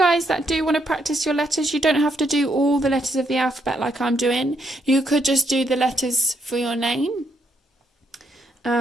that do want to practice your letters, you don't have to do all the letters of the alphabet like I'm doing. You could just do the letters for your name.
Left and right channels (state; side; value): normal; both; correlation 0.75